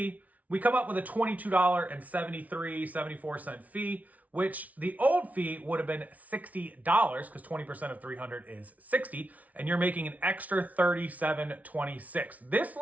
we come up with a $22.74 fee, which the old fee would have been $60 because 20% of 300 is 60, and you're making an extra $37.26. This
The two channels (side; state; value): left; late; 0.071 ms